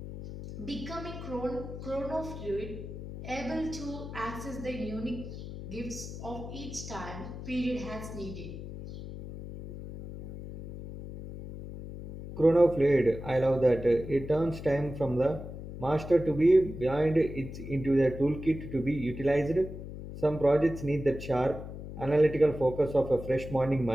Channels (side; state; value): left; noise; hum, 10 dB below the sound